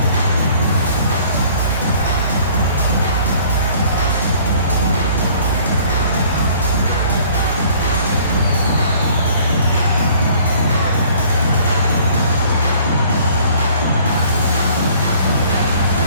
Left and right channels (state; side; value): inverted; both; correlation -0.55